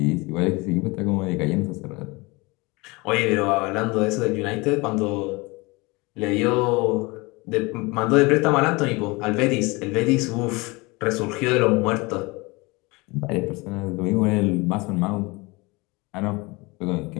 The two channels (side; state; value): right; quieter; 25.0 dB